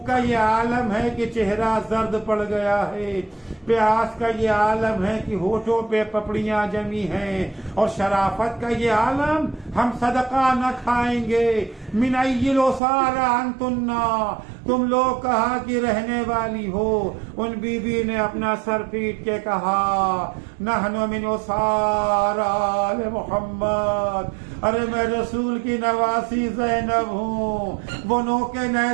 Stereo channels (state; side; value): drops out; left; at 12.8 s